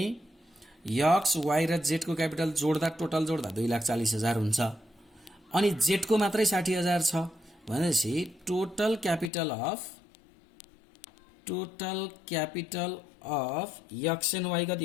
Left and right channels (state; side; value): drops out; right; at 9.3 s